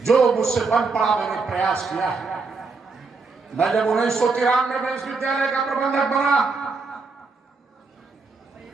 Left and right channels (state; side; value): quieter; left; 4.3 dB